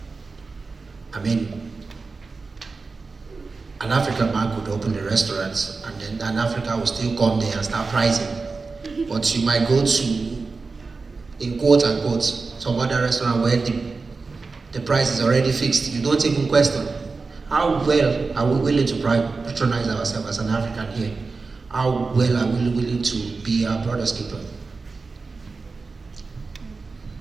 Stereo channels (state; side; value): quieter; left; 4.2 dB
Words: I mean, an African man could open a restaurant and then an African will still come there and start pricing. But you might go to, in quote unquote, some other restaurant where the price is already fixed. You don't even question. How well are we willing to patronize ourselves as an African here? How well are we willing to be our brother's keeper?